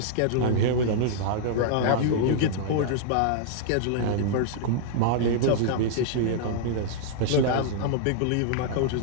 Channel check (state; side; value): different; both; correlation -0.01